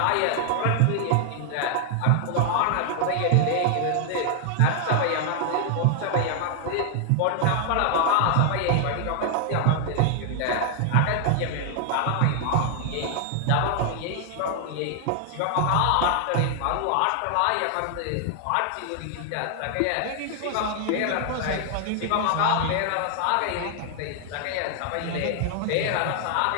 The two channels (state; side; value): different; both; correlation 0.00